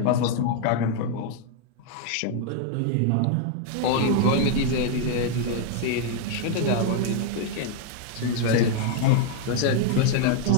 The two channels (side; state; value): both; different; correlation 0.00